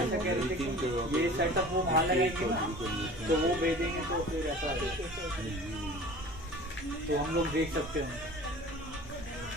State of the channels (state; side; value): normal; both; correlation 0.42